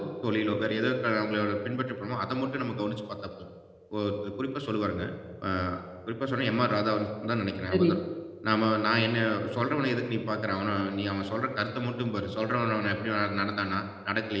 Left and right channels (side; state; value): both; identical; correlation 1.00